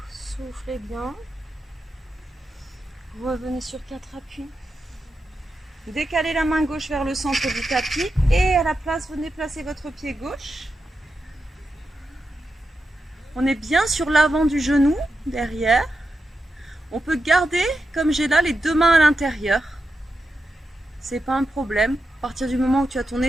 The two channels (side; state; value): both; normal; correlation 0.88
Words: Soufflez bien. Revenez sur 4 appuis. Décalez la main gauche vers le centre du tapis et à la place, venez placer votre pied gauche. On est bien sur l'avant du genou, derrière. On peut garder, comme j'ai là, les deux mains à l'intérieur. C'est pas un problème. À partir du moment où tu as ton